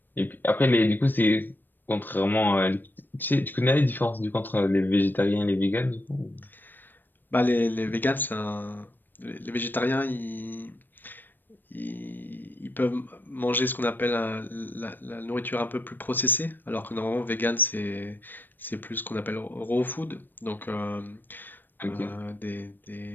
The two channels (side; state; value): right; late; 0.092 ms